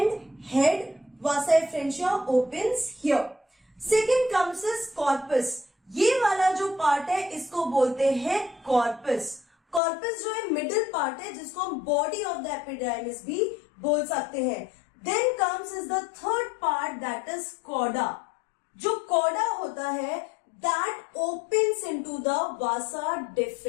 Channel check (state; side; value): drops out; right; at 9.8 s